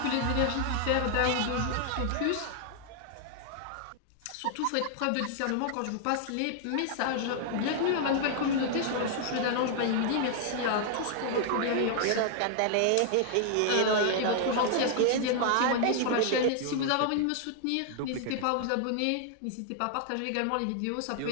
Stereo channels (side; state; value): both; different; correlation 0.00